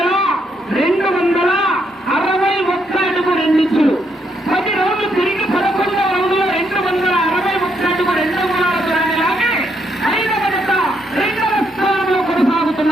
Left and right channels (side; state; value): both; normal; correlation 0.76